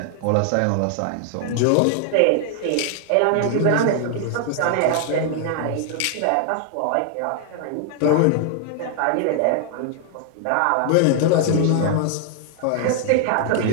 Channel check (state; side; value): different; both; correlation 0.00